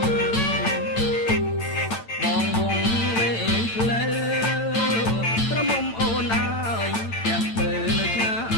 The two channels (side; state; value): right; late; 8.9 ms